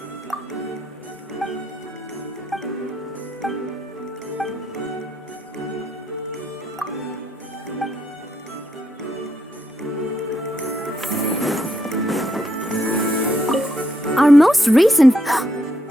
Our most recent...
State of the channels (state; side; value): normal; both; correlation 0.77